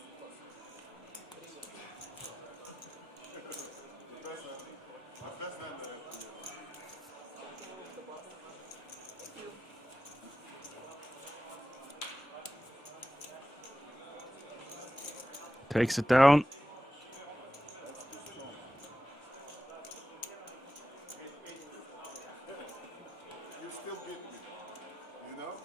Takes it down. You still beat me, you know?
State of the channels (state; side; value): normal; both; correlation 0.92